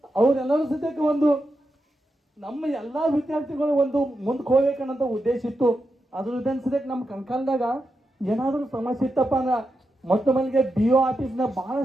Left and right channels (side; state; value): both; normal; correlation 0.87